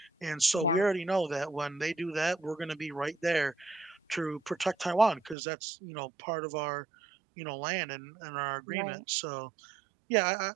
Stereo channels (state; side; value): drops out; left; at 5.4 s